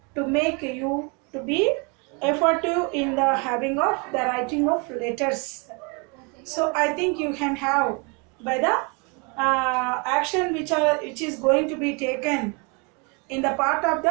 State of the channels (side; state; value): left; quieter; 32.3 dB